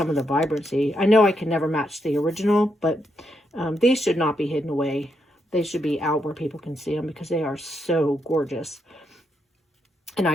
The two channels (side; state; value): both; normal; correlation 0.80